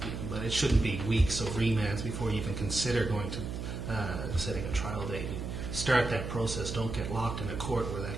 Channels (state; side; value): noise; right; hum, 5 dB below the sound